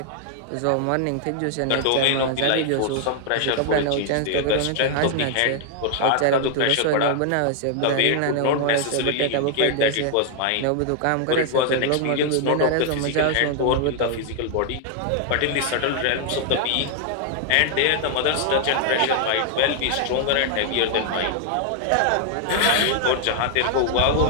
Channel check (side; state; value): both; different; correlation 0.00